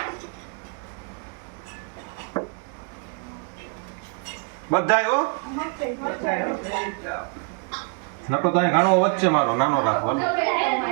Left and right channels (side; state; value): left; quieter; 38.7 dB